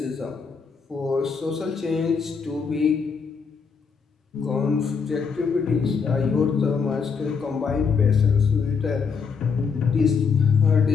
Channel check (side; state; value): right; quieter; 5.7 dB